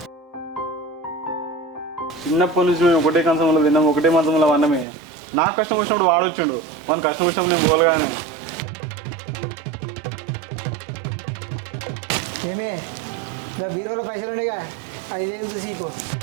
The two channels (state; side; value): drops out; left; at 4.9 s